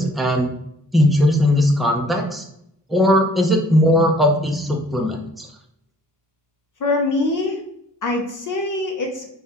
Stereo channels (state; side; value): normal; both; correlation 0.56